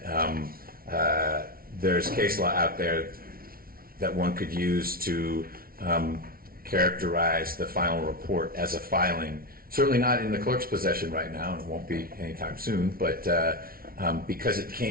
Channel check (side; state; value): left; late; 0.43 ms